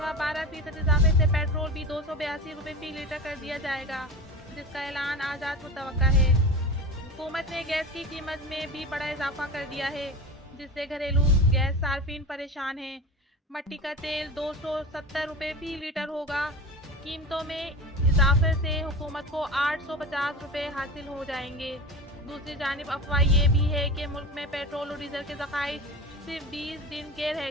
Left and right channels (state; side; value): normal; both; correlation 0.31